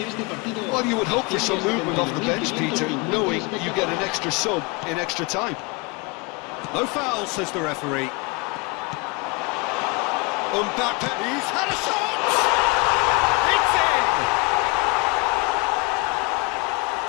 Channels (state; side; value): quieter; right; 27.4 dB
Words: Well, you would hope for some movement off the bench, Peter, knowing you get an extra sub in extra time. No foul, says the referee. Mbappe, he's had a shot! It's in!